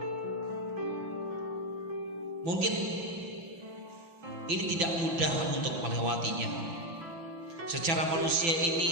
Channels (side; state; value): left; late; 6.0 ms